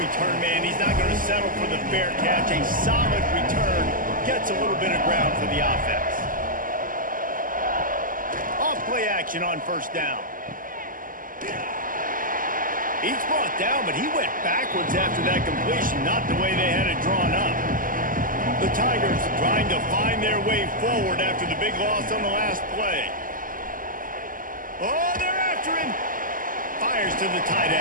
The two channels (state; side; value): late; left; 0.40 ms